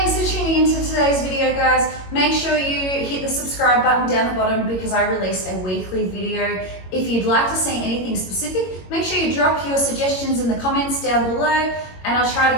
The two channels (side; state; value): right; late; 22 ms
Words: for tuning into today's video, guys. Make sure you hit the subscribe button down the bottom because I release a weekly video. If you'd like to see anything specific, make sure you drop your suggestions in the comments down below and I'll try to